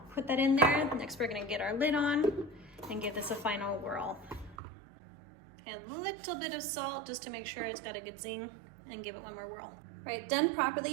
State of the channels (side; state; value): left; drops out; at 4.5 s